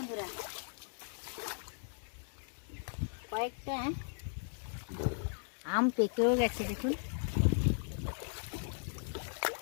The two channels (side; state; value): right; silent; digital silence